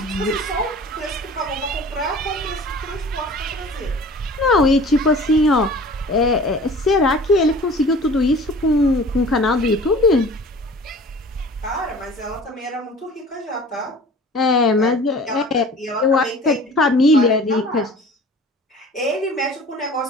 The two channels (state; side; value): normal; both; correlation 0.44